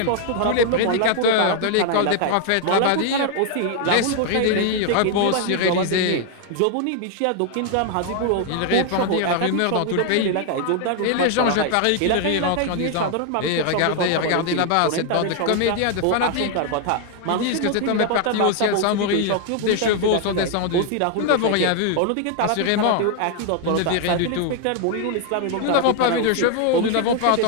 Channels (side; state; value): both; different; correlation 0.00